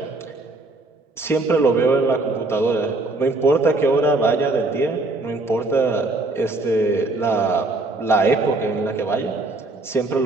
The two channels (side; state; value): left; quieter; 3.0 dB